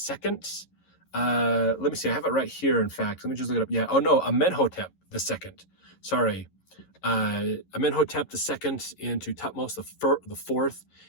Let me see, I have it right here, in fact. Let me just look it up. Yeah, oh no, Amenhotep the second. Sorry. Amenhotep the second into Thutmose the fourth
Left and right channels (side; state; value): right; late; 11 ms